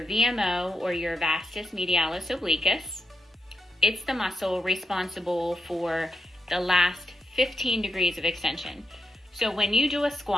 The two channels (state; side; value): normal; both; correlation 0.84